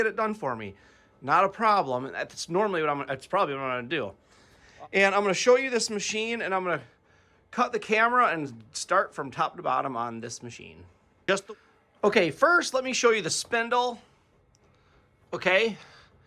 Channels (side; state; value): both; identical; correlation 1.00